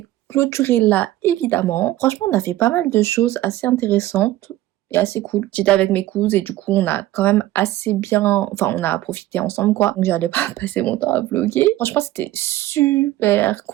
clôturer là, évidemment. Franchement, on a fait pas mal de choses assez intéressantes. est assez cool. J'étais avec mes cousines et du coup on a quand même assez bien, enfin on a profité ensemble quoi. Donc j'allais pas passer mon temps à vlogger. Franchement c'était super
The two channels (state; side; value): quieter; left; 15.5 dB